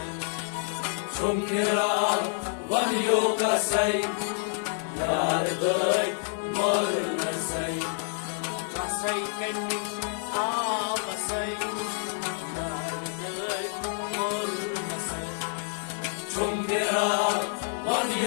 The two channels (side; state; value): right; silent; digital silence